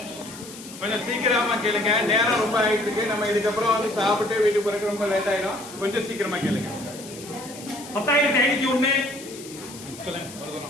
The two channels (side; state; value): left; noise; hiss, 15 dB below the sound